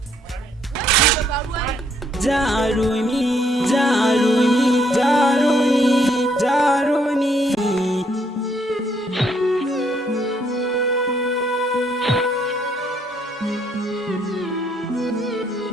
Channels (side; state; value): both; normal; correlation 0.70